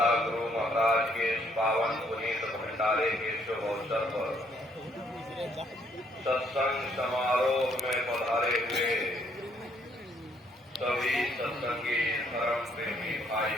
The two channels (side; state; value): both; normal; correlation 0.68